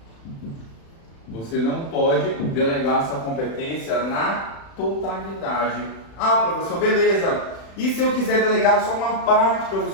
delegar essa competência na totalidade. Ah, professor, beleza. E se eu quiser delegar só uma parte,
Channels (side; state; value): right; late; 36 ms